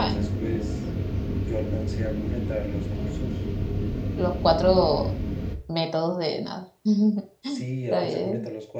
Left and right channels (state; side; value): identical; both; correlation 1.00